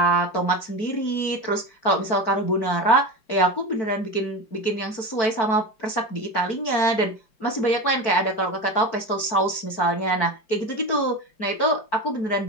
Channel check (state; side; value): late; right; 4.6 ms